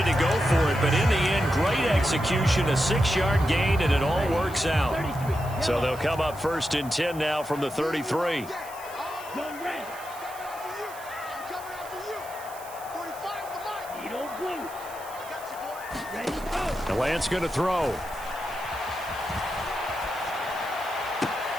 to go for it, but in the end, great execution, a 6-yard gain, and it all works out. So they'll come up 1st and 10 now from the 33. And Lance going to throw.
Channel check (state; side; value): noise; right; hiss, 17 dB below the sound